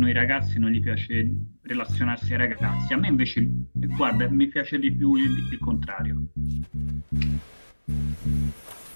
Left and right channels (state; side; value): inverted; both; correlation -1.00